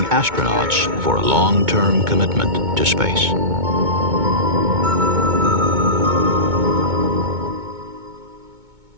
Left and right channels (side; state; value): left; late; 2.2 ms